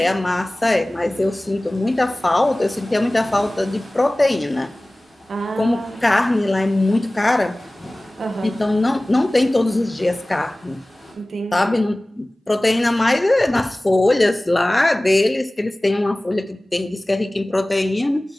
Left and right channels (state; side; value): normal; both; correlation 0.98